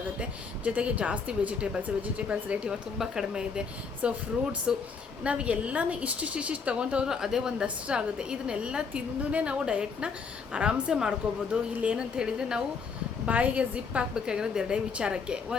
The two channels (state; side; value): quieter; right; 5.3 dB